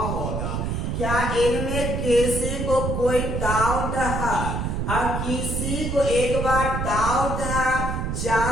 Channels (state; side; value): noise; right; rumble, 2 dB below the sound